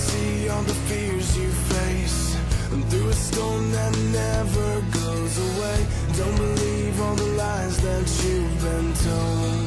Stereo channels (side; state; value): both; identical; correlation 1.00